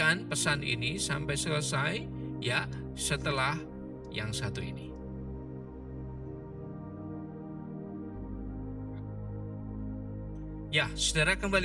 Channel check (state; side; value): identical; both; correlation 1.00